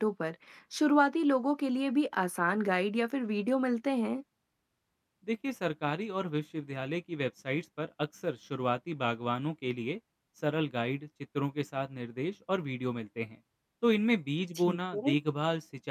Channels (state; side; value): identical; both; correlation 1.00